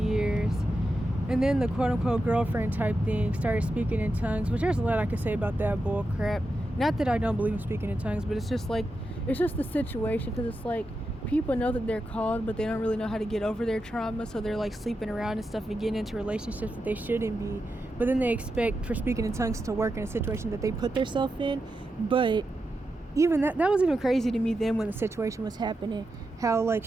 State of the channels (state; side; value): normal; both; correlation 0.88